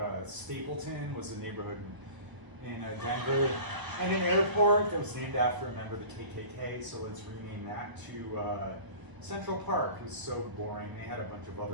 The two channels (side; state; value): left; late; 1.0 ms